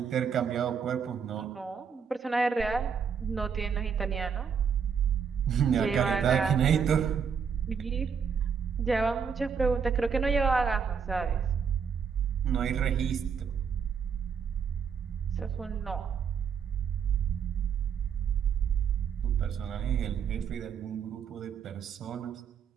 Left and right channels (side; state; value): left; quieter; 6.7 dB